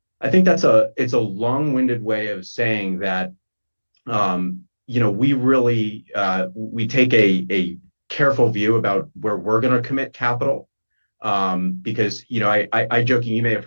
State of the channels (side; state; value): both; inverted; correlation -1.00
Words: I think it's a long-winded way of saying that we really we take a careful view about where we're going to commit capital. Because I joking, you may have